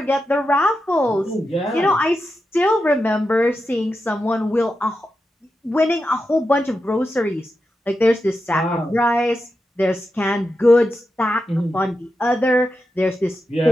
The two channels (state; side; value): normal; both; correlation 0.89